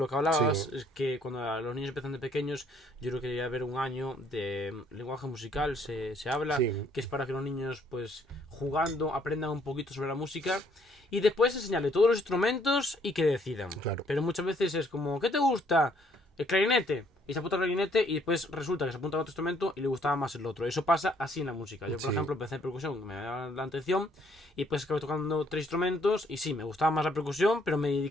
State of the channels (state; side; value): normal; both; correlation 0.65